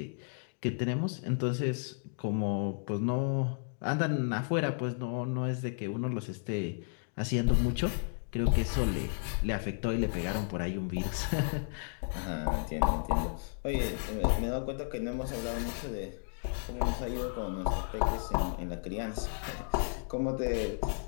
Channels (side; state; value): right; silent; digital silence